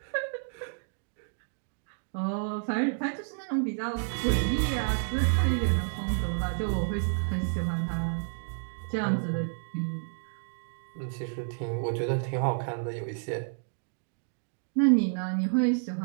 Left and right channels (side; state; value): left; silent; digital silence